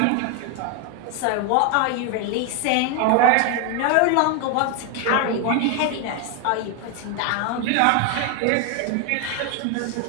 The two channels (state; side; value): different; both; correlation 0.01